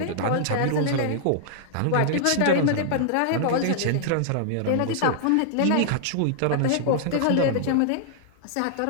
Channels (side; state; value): both; different; correlation -0.01